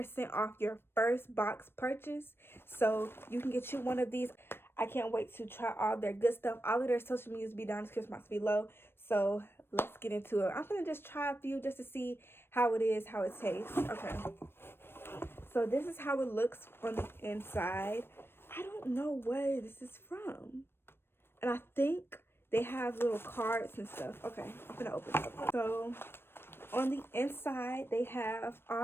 off your first box purchase. So you can get you one of these. I can't wait to try all their good stuff. All of their social medias be down in the description box below. So let's get into it. I'm gonna just try a few just to see how it is, how it tastes. Okay. So this is how it looks on the inside. I don't know where this is from. And I think they have little cards and stuff. Okay, I'm gonna open it up. So on the inside, they have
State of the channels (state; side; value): late; right; 0.11 ms